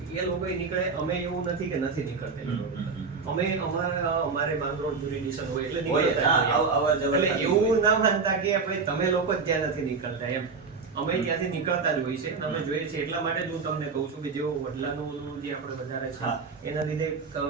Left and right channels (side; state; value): left; quieter; 4.9 dB